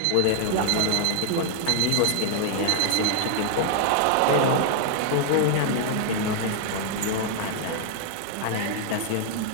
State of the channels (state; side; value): different; both; correlation 0.00